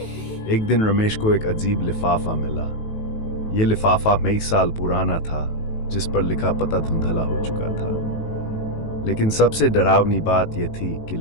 एक दिन रमेश को एक अजीब लिफाफा मिला। ये लिफाफा कई साल पुराना था, जिस पर लिखा पता धुंधला हो चुका था। लेकिन सबसे डरावनी बात यह थी कि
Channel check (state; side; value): late; right; 18 ms